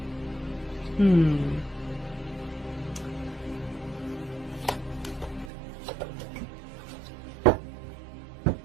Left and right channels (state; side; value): drops out; left; at 5.5 s